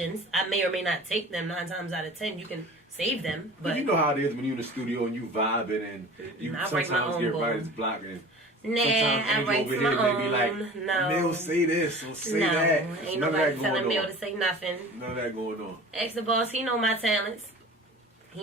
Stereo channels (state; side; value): normal; both; correlation 0.40